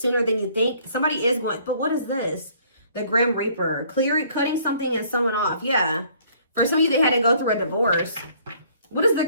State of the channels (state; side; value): inverted; both; correlation -0.59